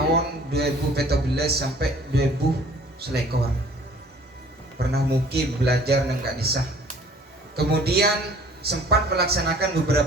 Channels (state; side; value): normal; both; correlation 0.53